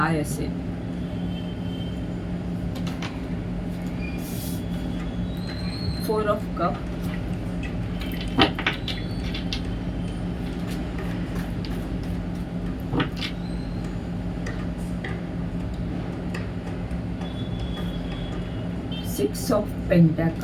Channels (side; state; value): both; identical; correlation 1.00